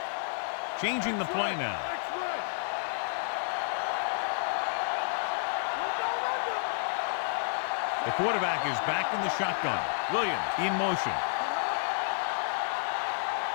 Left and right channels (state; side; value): silent; right; digital silence